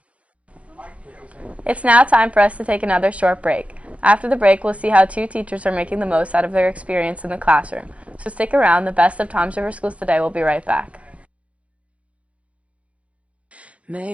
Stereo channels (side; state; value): left; late; 0.063 ms